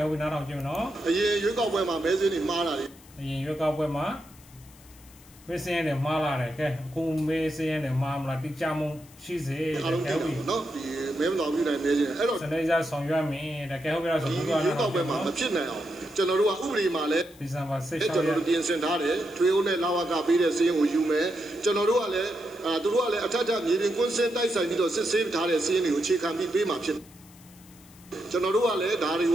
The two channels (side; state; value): left; noise; hiss, 24 dB below the sound